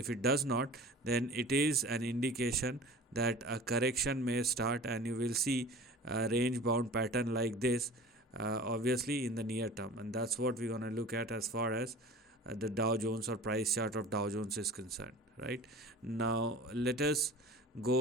it does not, then it is an indication that a correction may start, and you will see a range bound pattern like this, obviously in the near term, and that's what we're going to look at as far as the Dow Jones or price chart of Dow Jones is concerned. Right now, let us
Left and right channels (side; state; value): both; normal; correlation 0.40